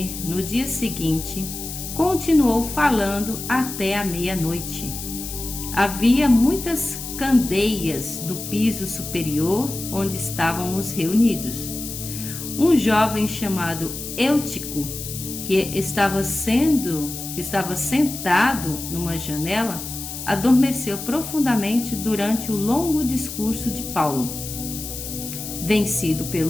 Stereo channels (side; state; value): left; noise; hiss, 8 dB below the sound